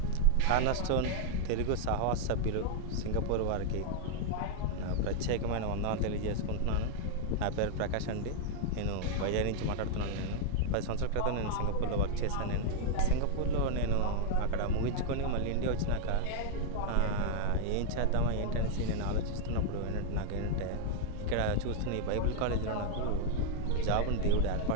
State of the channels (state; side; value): different; both; correlation 0.00